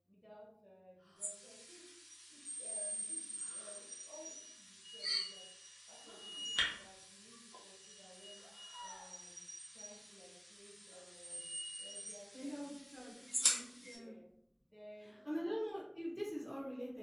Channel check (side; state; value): both; identical; correlation 1.00